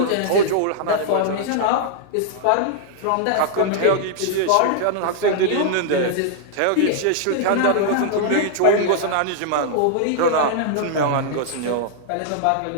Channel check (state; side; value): different; both; correlation -0.01